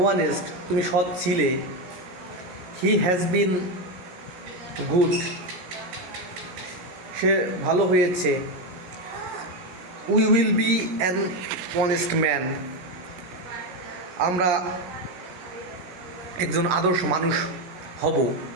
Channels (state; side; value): late; left; 17 ms